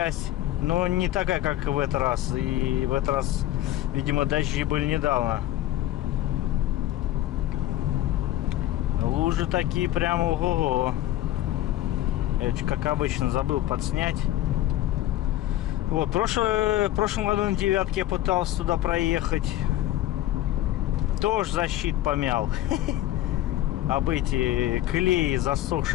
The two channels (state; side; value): quieter; right; 14.0 dB